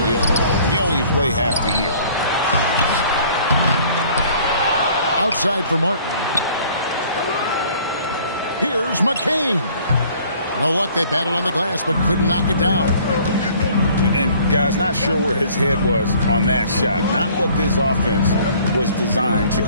if you only play half the year? Outside for Martin. Here's McCain. No luck, they battled on the glass, but couldn't knock it down. And, guys, not sure where his head was on that shot. Not what this offense was designed to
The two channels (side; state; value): both; inverted; correlation -0.54